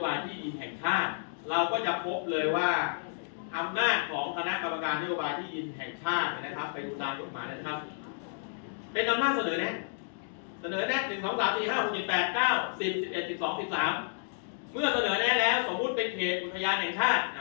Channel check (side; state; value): right; silent; digital silence